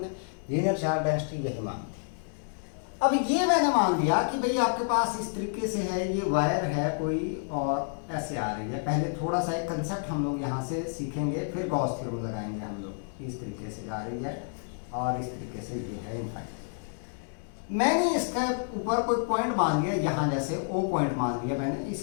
ने, लीनियर चार्ज डेंसिटी यही मान ली। अब ये मैंने मान लिया कि भाई आपके पास इस तरीके से है, ये वायर है कोई और ऐसे आ रही है। पहले थोड़ा सा एक कंसेप्ट हम लोग यहाँ से सीखेंगे, फिर गॉस थ्योरम लगाएंगे हम लोग। इस तरीके से जा रही है, और इस तरीके से ये है इनफाइनाइट। मैंने इसके ऊपर कोई पॉइंट मान लिया, यहाँ जैसे O पॉइंट मान लिया मैंने,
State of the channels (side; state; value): right; silent; 58 dB below the other